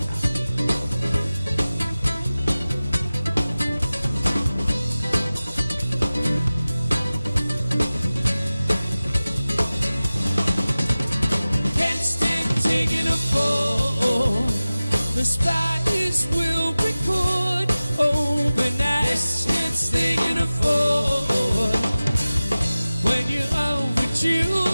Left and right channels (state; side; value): inverted; both; correlation -0.97